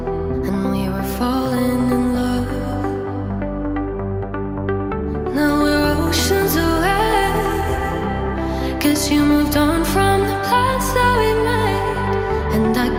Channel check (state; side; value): identical; both; correlation 1.00